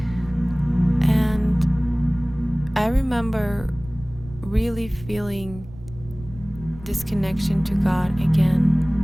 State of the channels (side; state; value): right; noise; rumble, 17 dB below the sound